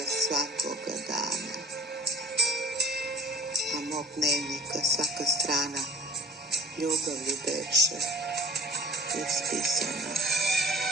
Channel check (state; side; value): normal; both; correlation 0.47